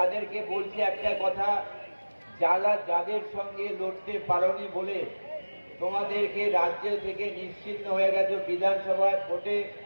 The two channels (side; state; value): both; inverted; correlation -1.00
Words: বলছি একটা কথা, যাদের সঙ্গে লড়তে পারোনি বলে তোমাদেরকে রাজ্য থেকে নিশ্চিহ্ন হয়ে গেছে, বিধানসভায় ভোটে